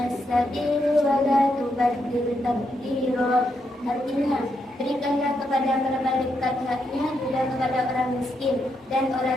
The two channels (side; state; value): both; normal; correlation 0.80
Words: sabil wa la tubaddil tabdira. Artinya, berikanlah kepada kerabat dekat haknya, juga kepada orang miskin dan